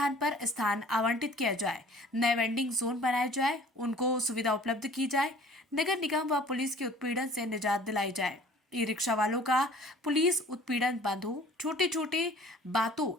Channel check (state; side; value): normal; both; correlation 0.50